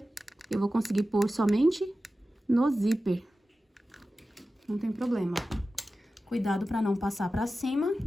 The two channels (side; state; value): both; normal; correlation 0.94